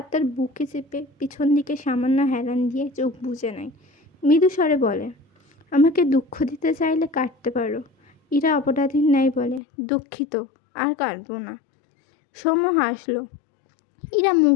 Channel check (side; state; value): right; drops out; at 9.6 s